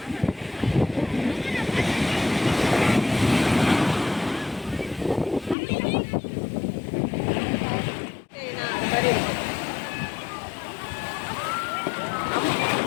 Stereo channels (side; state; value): right; drops out; at 5.6 s